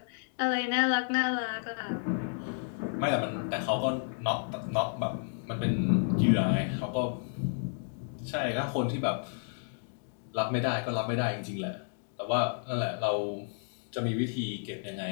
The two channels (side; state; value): right; silent; digital silence